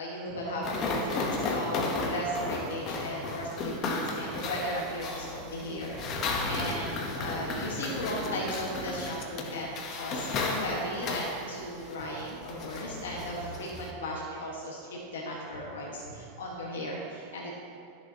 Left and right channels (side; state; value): both; normal; correlation 0.02